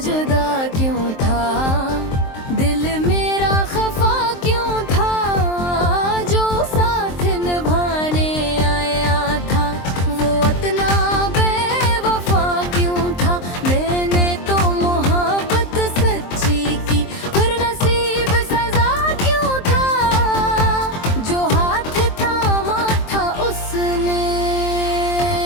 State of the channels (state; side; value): late; right; 23 ms